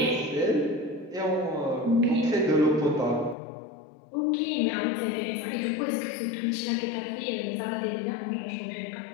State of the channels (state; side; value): drops out; right; at 3.4 s